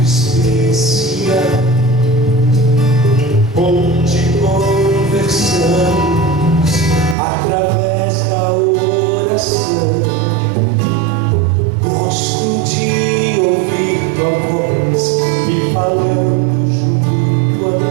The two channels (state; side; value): drops out; left; at 7.2 s